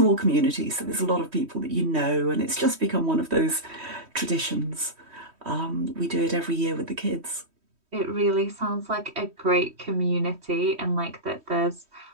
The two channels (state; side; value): late; left; 3.1 ms